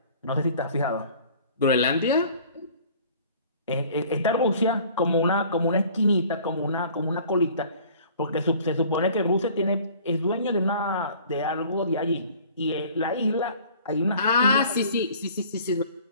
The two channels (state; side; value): inverted; both; correlation -0.50